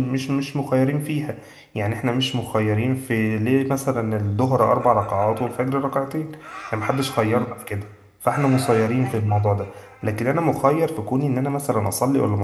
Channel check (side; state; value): both; identical; correlation 1.00